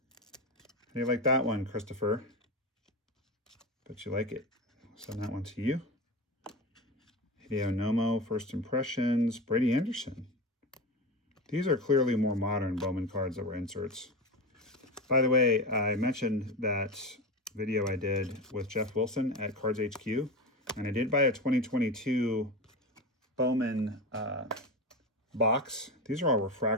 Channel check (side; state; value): both; normal; correlation 0.23